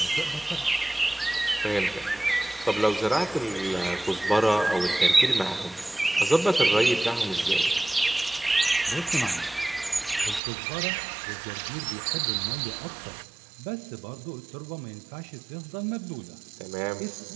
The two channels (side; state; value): left; drops out; at 10.4 s